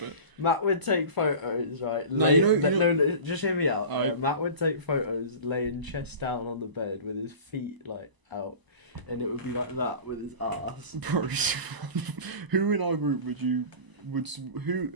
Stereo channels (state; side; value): late; left; 1.0 ms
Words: Matt would take photos, right? No, just hear me out. Right. Matt would take photos laying chest down on the bed with his feet, like, out. And it would be like that with his ass. Bro, who in our group who